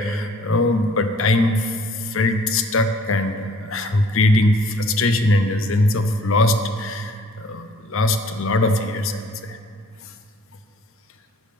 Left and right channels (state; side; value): normal; both; correlation 0.56